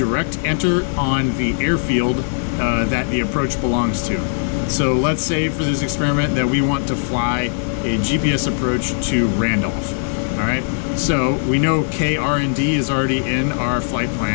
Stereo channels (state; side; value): silent; right; digital silence